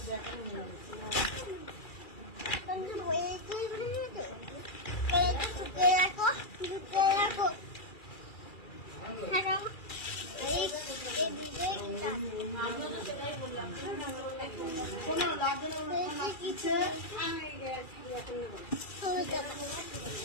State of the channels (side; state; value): right; late; 2.4 ms